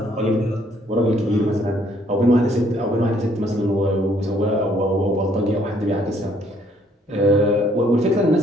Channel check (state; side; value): normal; both; correlation 0.65